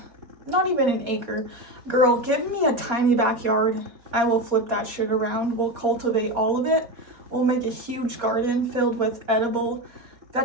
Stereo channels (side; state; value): left; late; 4.2 ms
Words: not even an acre. Girl, give me a tiny backyard. I will flip that shit around. We'll cultivate all of it. We'll make a huge garden filled with edible